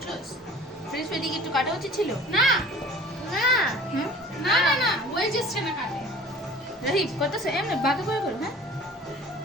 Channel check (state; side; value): normal; both; correlation 0.45